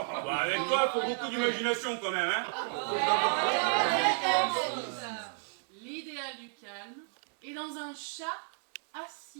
avec toi, faut beaucoup d'imagination quand même, hein. L'idéal du calme est dans un chat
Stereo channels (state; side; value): silent; left; 56 dB below the other